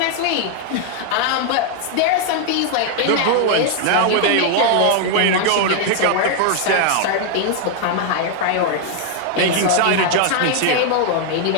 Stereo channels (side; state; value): both; different; correlation 0.00